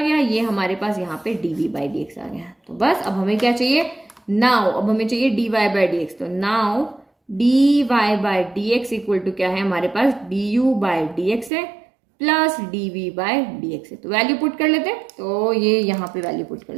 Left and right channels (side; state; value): left; drops out; at 11.5 s